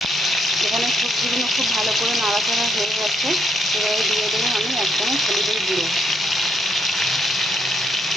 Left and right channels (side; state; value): both; normal; correlation 0.73